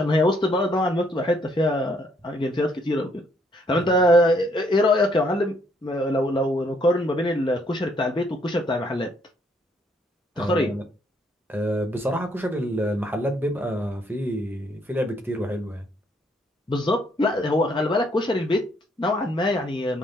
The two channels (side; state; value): both; normal; correlation 0.69